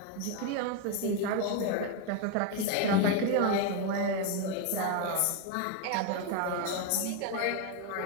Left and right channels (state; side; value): different; both; correlation 0.02